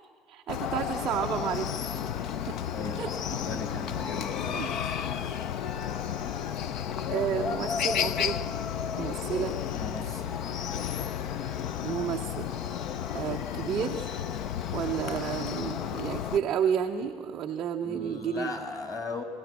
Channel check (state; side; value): normal; both; correlation 0.36